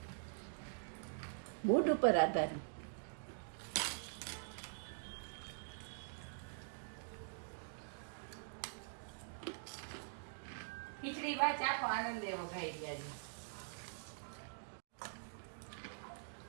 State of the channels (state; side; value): silent; left; digital silence